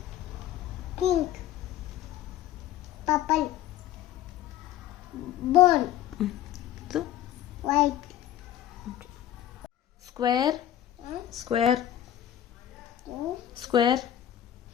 ಪಿಂಕ್, ಪರ್ಪಲ್, ಬೋನ್, ಇದು white. Square, square, square,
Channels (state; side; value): quieter; right; 12.0 dB